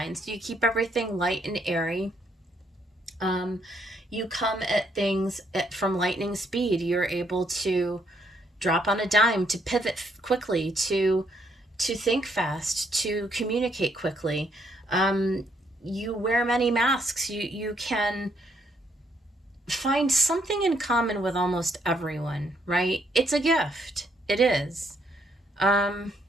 so you keep everything light and airy. You come at things from lightning speed. You're able to drop on a dime, to pivot quickly, to think fast, to communicate quickly. You wear many masks. You can find something in common with almost everyone, right? It's a gift. It is.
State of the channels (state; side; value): normal; both; correlation 0.72